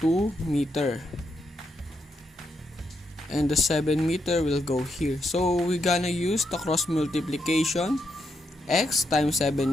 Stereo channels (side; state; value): both; normal; correlation 0.80